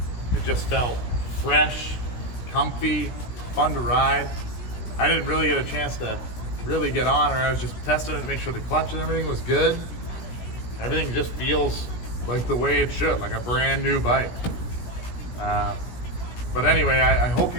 It just felt fresh, comfy, fun to ride. I didn't really get a chance to really get on her. I was just testing it to make sure the clutch and everything was good. Everything just feels like the way it should, like a brand new bike. But anyway, I hope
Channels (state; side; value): late; right; 17 ms